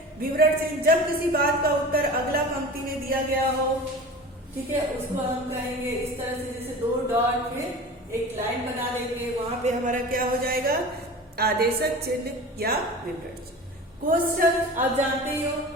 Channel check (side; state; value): both; normal; correlation 0.36